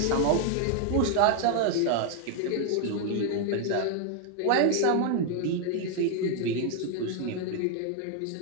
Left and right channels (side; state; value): both; different; correlation 0.00